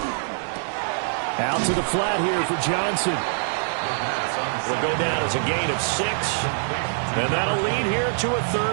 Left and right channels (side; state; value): left; silent; 60 dB below the other